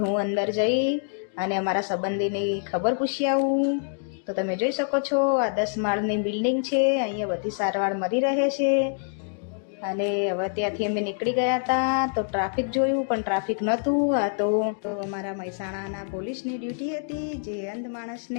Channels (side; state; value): right; silent; digital silence